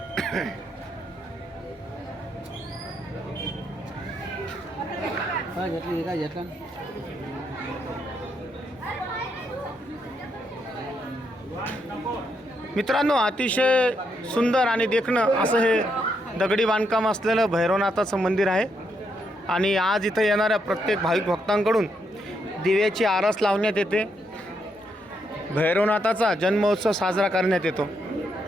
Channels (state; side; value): normal; both; correlation 0.78